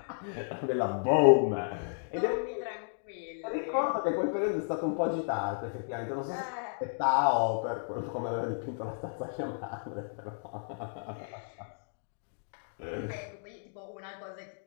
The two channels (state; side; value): silent; right; digital silence